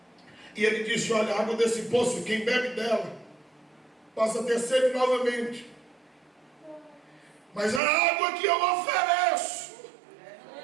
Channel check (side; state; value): left; drops out; at 7.8 s